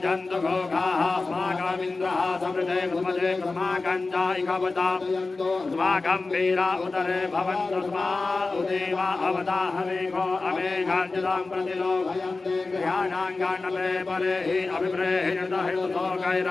जन्तु घोघाः अस्माकमिन्द्रः समृते कुमते अस्माकञ्जायिकवता अस्माकं वीरा उदरे भवन्तस्मा उदेवा अवताहमेघो अमेघाञ्जलां प्रतिलोभयन्ते गृहाणाङ्गाण्डले परे हि अभिप्रेहितहितुतो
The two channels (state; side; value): quieter; right; 3.6 dB